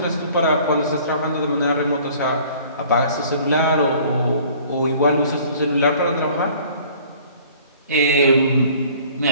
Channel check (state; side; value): inverted; both; correlation -0.52